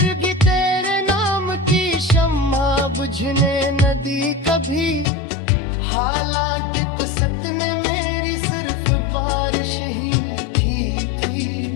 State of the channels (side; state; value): right; drops out; at 5.1 s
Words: भी तेरे नाम की शम्मा बुझने न दी कभी, हालांकि कसत ने मेरी सिर्फ बारिश ही लिखी थी।